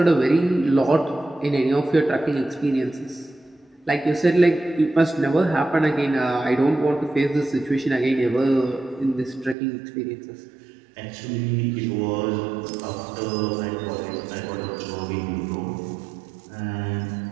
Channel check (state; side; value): drops out; left; at 9.6 s